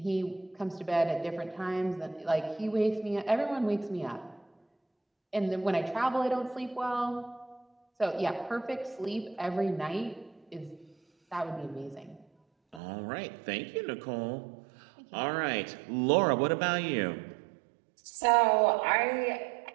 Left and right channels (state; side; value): drops out; left; at 12.8 s